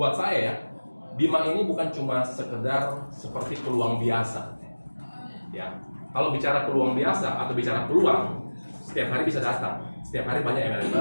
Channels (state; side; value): inverted; both; correlation -1.00